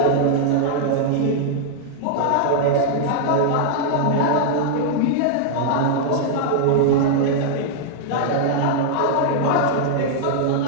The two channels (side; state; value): both; different; correlation -0.01